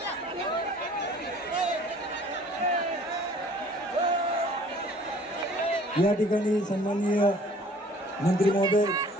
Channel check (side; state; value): both; normal; correlation 0.53